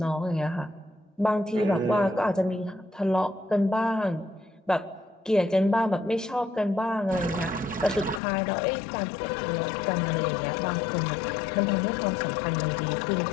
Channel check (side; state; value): right; drops out; at 8.2 s